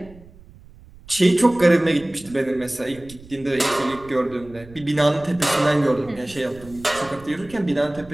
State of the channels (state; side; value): noise; right; rumble, 22 dB below the sound